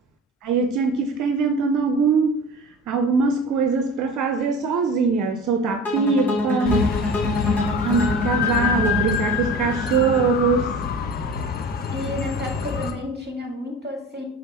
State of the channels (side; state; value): both; normal; correlation 0.37